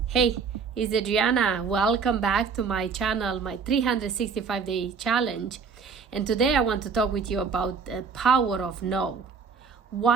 Hey, it's Adriana. Welcome back to my channel, my 365-day challenge. And today I want to talk with you about the power of no.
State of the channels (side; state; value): left; quieter; 5.6 dB